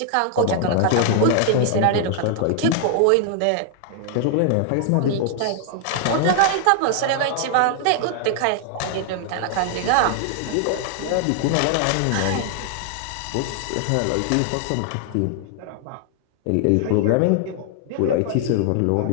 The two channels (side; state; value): both; different; correlation 0.00